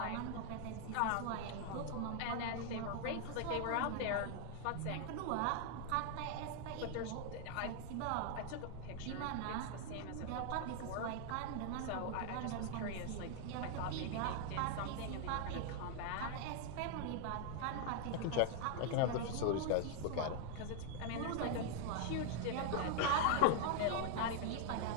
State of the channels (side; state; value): both; different; correlation 0.00